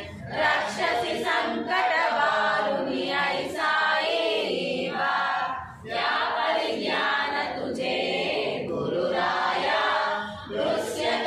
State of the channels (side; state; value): both; identical; correlation 1.00